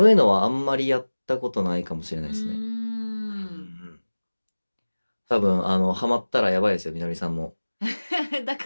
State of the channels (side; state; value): both; inverted; correlation -1.00